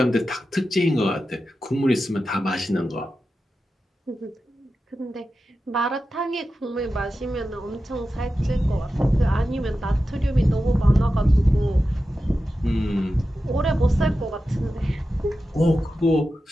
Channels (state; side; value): normal; both; correlation 0.92